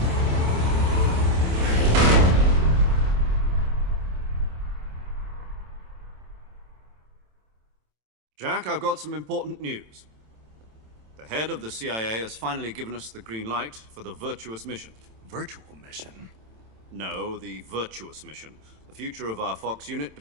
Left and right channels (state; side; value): late; left; 27 ms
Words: Jack, I've got some important news. The head of the CIA has finally given us the green light for the Virtuous mission. Virtual mission? No, the Virtuous mission. The future of our Fox unit